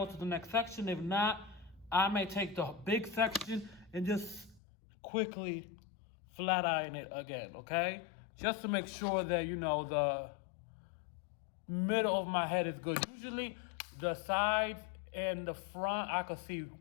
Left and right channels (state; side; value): drops out; right; at 4.6 s